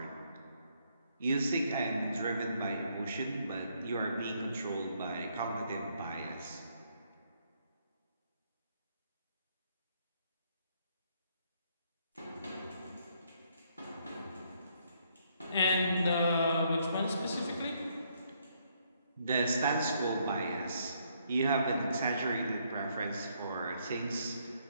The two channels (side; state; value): both; inverted; correlation -0.71